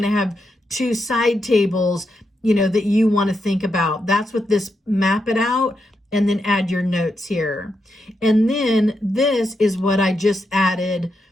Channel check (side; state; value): both; normal; correlation 0.84